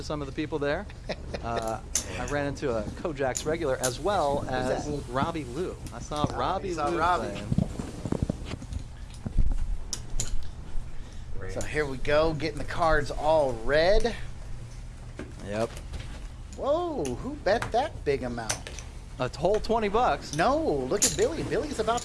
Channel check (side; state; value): both; identical; correlation 1.00